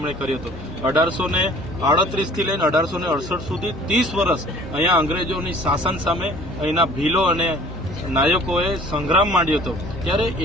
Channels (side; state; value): both; normal; correlation 0.50